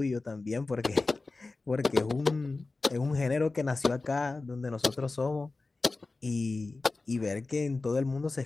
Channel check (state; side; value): quieter; right; 3.5 dB